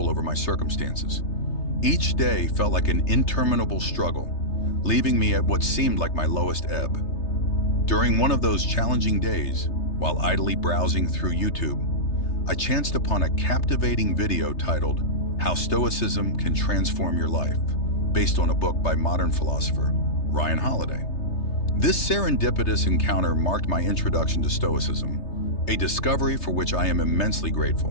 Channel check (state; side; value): late; right; 3.3 ms